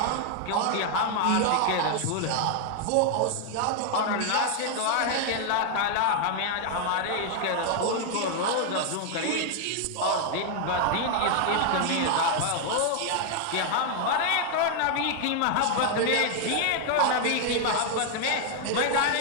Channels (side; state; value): both; different; correlation 0.00